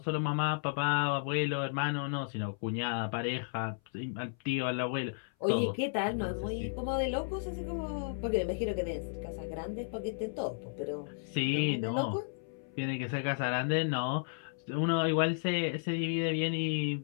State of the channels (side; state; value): right; silent; 55 dB below the other